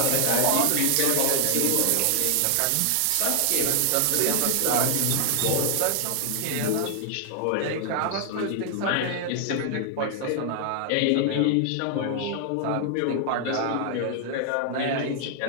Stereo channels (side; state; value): both; different; correlation 0.00